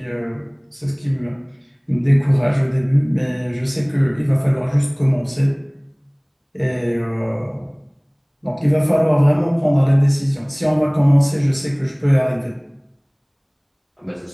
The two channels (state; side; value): identical; both; correlation 1.00